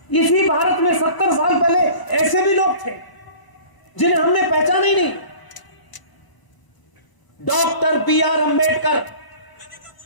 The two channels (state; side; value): late; right; 1.0 ms